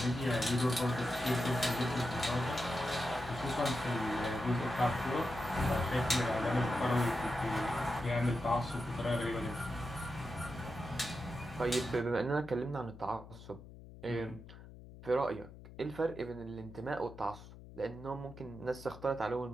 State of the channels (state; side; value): noise; left; hum, 16 dB below the sound